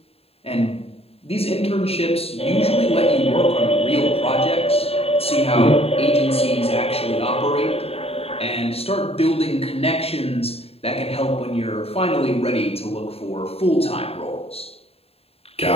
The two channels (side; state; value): right; late; 0.29 ms